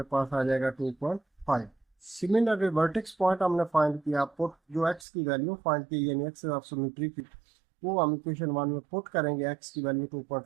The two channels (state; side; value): drops out; left; at 5.1 s